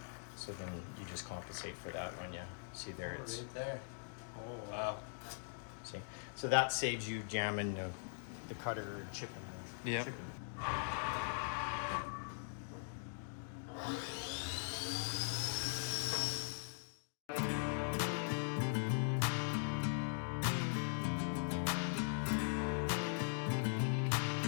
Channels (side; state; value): right; silent; digital silence